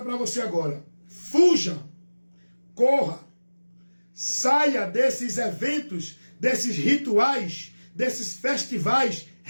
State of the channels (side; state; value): both; inverted; correlation -1.00